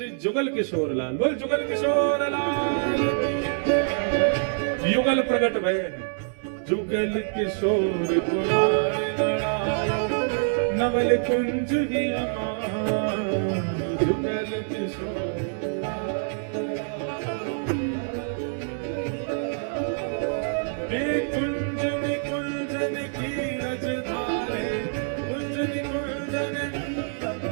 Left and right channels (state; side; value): silent; left; digital silence